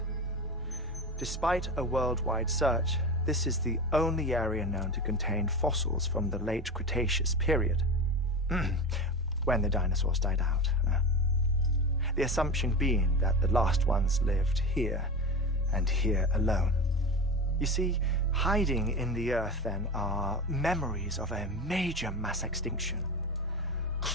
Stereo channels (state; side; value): normal; both; correlation 0.26